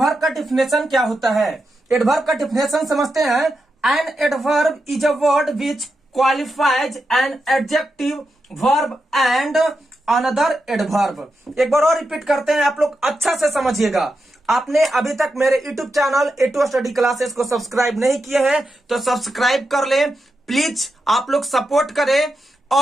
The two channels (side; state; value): both; normal; correlation 0.87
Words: का डिफिनेशन क्या होता है। एडवर्ब का डिफिनेशन समझते हैं। An adverb is a word which qualifies an adjective, verb and another adverb. एक बार और रिपीट करते हैं, आप लोग अच्छा से समझिएगा। आपने अभी तक मेरे YouTube channel A2 study classes को सब्सक्राइब नहीं किए हैं तो सब्सक्राइब कर लें प्लीज। आप लोग सपोर्ट करें